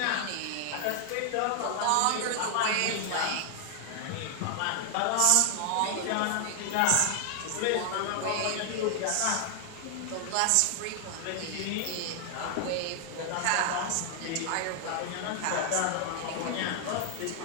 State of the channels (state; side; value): different; both; correlation 0.00